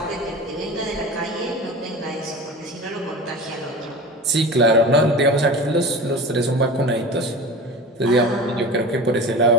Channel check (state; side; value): normal; both; correlation 0.33